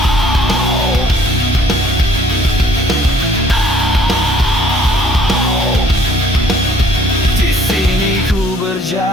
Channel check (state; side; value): normal; both; correlation 0.59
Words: Di sini ku